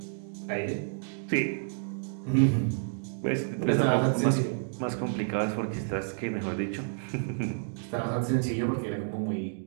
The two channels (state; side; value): silent; left; digital silence